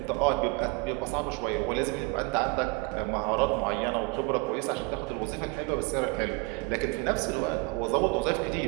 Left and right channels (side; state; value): left; quieter; 27.4 dB